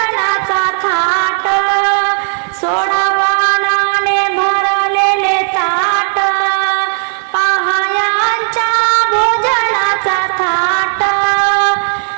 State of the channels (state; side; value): silent; left; digital silence